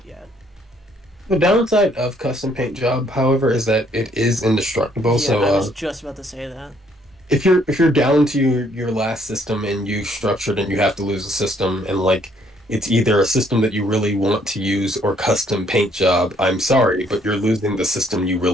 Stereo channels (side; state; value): both; normal; correlation 0.66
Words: yet. The downside of custom paint job, however, is that it is indestructible. Yeah, So I was just about to say that. if you're down to your last system and you structured and you have to lose a system and like it's either a system that you really want to use or custom paint job, I'm sorry, but you're losing the system you